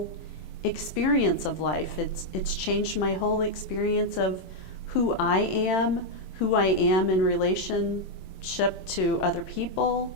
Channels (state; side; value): late; right; 27 ms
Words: experience of life. It's changed my whole experience of who I am in relationship to other people,